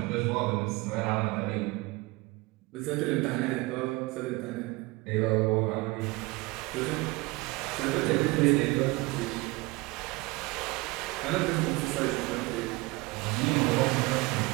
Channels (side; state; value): left; quieter; 23.3 dB